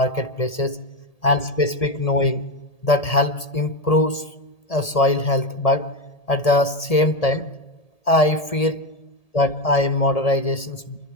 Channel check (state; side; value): late; right; 1.7 ms